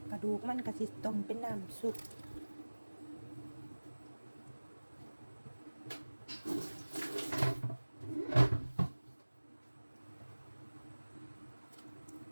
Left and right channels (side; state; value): both; inverted; correlation -1.00